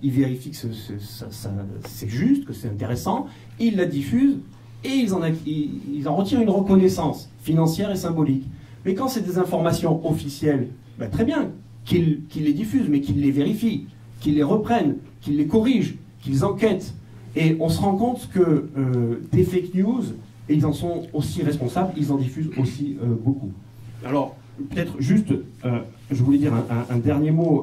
ils vérifient que c'est juste, que c'est intéressant, ils la diffusent, et ils en retirent une reconnaissance financière et symbolique. Mais quand c'est des informations officielles, ben très bien, qu'ils les diffusent, mais qu'ils les vérifient, qu'ils les reprennent, qu'ils les corrigent, qu'ils enquêtent. Et on se rend compte que des fake news, et ils en sont aussi responsables, ils en diffusent aussi beaucoup. Alors, peut-être juste, je voulais dire un dernier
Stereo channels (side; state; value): both; identical; correlation 1.00